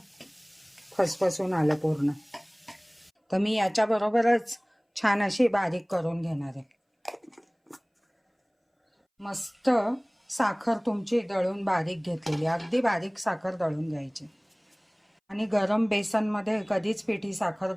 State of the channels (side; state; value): both; identical; correlation 1.00